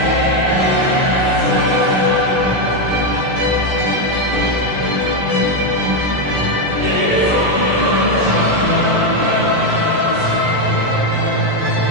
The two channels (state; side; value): late; left; 16 ms